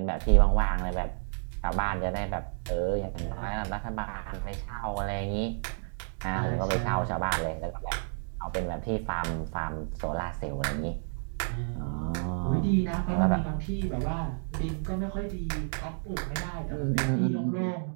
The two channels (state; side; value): silent; left; digital silence